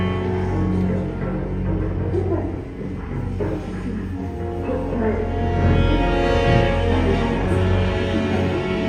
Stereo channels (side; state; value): both; identical; correlation 1.00